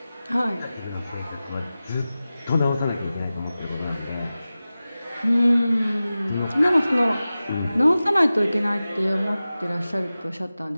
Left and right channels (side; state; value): both; inverted; correlation -0.96